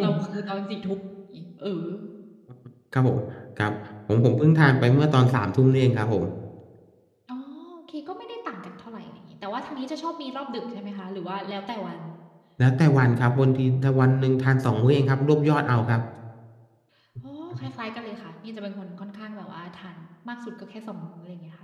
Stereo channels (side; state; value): both; identical; correlation 1.00